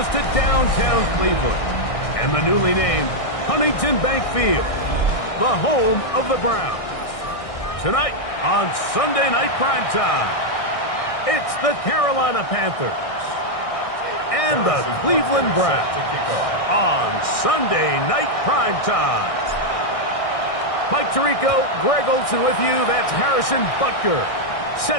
to downtown Cleveland and the newly named Huntington Bank Field, the home of the Browns. Tonight on Sunday Night Primetime, it's the Carolina Panthers and the Cleveland Browns on Sunday Night Primetime. Mike Tirico, Greg Olson with you. That's Harrison Butker,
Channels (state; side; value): late; right; 1.6 ms